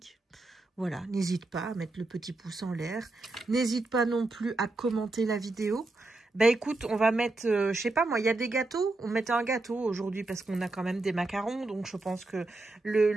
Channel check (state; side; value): quieter; left; 3.1 dB